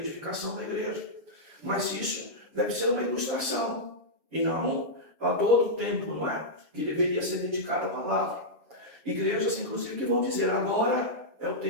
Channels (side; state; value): left; late; 7.2 ms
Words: da igreja. Mas isso deve ser uma ilustração e não todo o tempo, não é? Que deveria ser dedicado à palavra. Igrejas, inclusive, que vão dizer agora é o